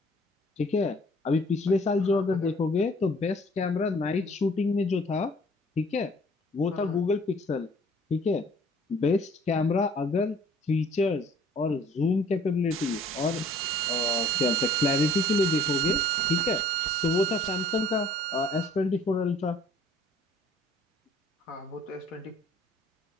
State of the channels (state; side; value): normal; both; correlation 0.55